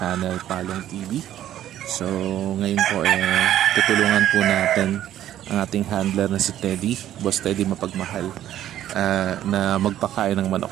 Palong TV. So ngayon po tutulungan po natin ang ating handler na si Teddy, Boss Teddy Mapagmahal, na magpakain ng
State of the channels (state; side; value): quieter; left; 12.0 dB